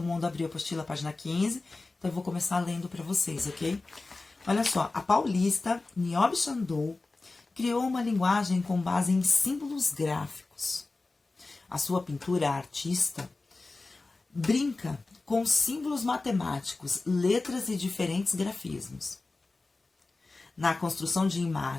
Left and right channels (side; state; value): right; quieter; 3.4 dB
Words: mundo abriu a apostila, página 15, então eu vou começar lendo para vocês, ok? Olha só, a paulista Niobe Sandow criou uma linguagem com base em símbolos gráficos. A sua pintura artista brinca com símbolos matemáticos, letras e diferentes grafismos. Na construção de